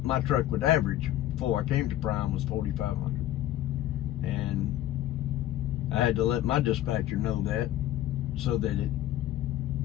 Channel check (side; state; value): right; quieter; 13.4 dB